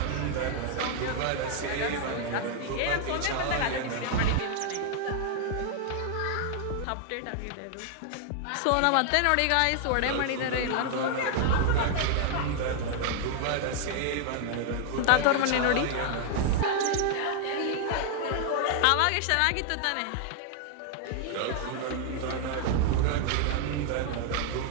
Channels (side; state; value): both; different; correlation 0.00